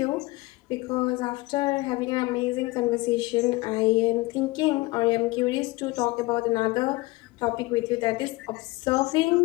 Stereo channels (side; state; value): right; quieter; 21.6 dB